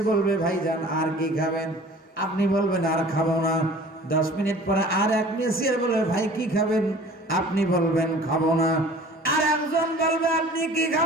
বলবে ভাইজান আর কি খাবেন? আপনি বলবেন আর খাবো না। 10 মিনিট পরে আর এক মেসিয়ার বলবে ভাই কি খাবেন? আপনি বলবেন খাবো না। আর একজন বলবে আপনি কি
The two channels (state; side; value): normal; both; correlation 0.47